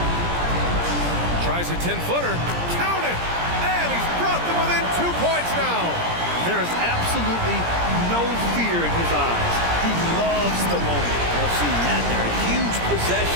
Tries a 10-footer. Count it! And he's brought them within 2 points now. There is absolutely no fear in his eyes. He loves the moment. I've seen that there. A huge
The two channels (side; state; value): left; late; 17 ms